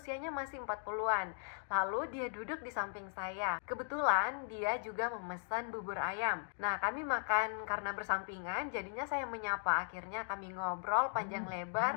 masih 40-an. Lalu dia duduk di samping saya. Kebetulan dia juga memesan bubur ayam. Nah, kami makan karena bersampingan, jadinya saya menyapa. Akhirnya kami ngobrol panjang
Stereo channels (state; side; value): silent; right; digital silence